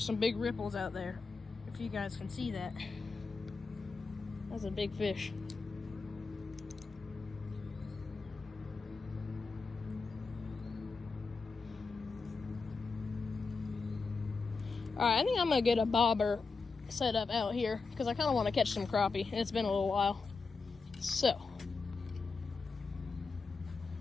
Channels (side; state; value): right; quieter; 4.4 dB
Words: some big ripples out there. If you guys can see that. That's a big fish. Alright, I think I'm gonna get a bobber set up out here because I kind of want to catch some crappie. It's been a little while. So,